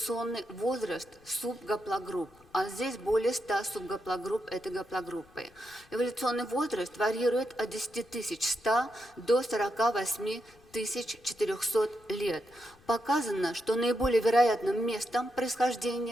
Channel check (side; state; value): left; noise; rumble, 28 dB below the sound